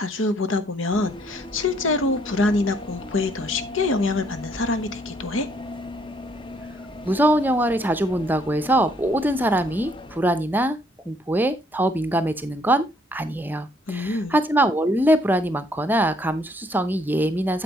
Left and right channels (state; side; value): normal; both; correlation 0.67